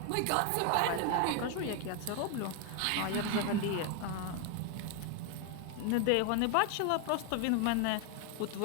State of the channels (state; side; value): different; both; correlation 0.01